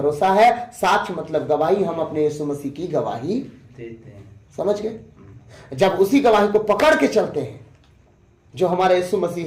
है, साक्ष्य मतलब गवाही, हम अपने यीशु मसीह की गवाही देते हैं। समझ गए? जब उसी गवाही को पकड़ के चलते हैं, जो हमारा यीशु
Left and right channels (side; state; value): both; identical; correlation 1.00